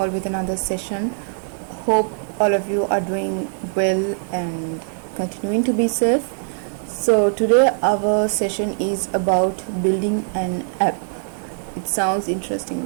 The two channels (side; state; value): left; silent; digital silence